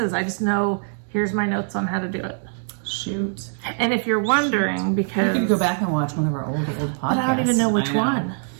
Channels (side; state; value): left; silent; 64 dB below the other